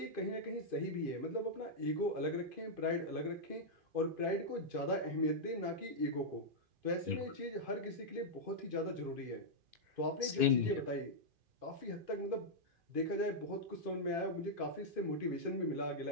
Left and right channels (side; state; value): left; late; 2.5 ms